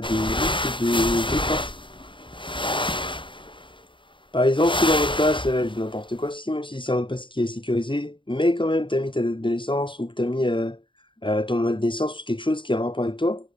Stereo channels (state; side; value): late; right; 0.24 ms